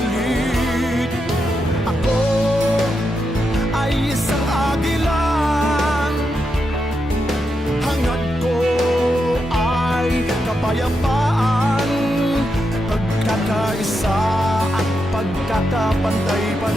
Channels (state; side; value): normal; both; correlation 0.85